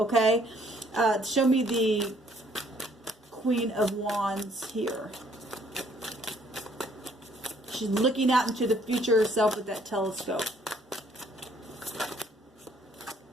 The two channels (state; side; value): normal; both; correlation 0.63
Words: show me the Queen of Wands here. She's looking out into the future herself with that telescope.